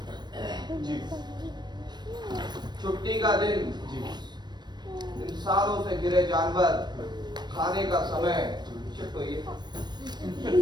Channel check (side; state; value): left; late; 0.21 ms